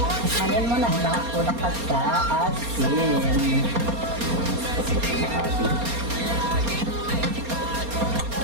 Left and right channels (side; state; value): left; late; 4.3 ms